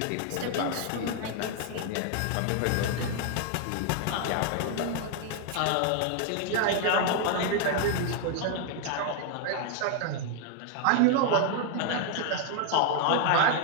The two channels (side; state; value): both; different; correlation 0.00